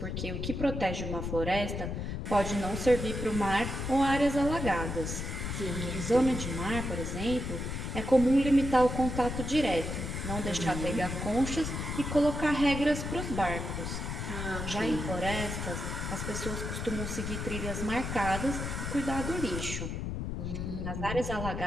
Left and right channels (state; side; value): noise; left; rumble, 4 dB below the sound